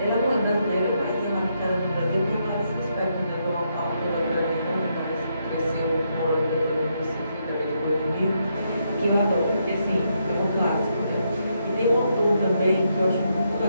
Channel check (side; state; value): both; inverted; correlation -0.78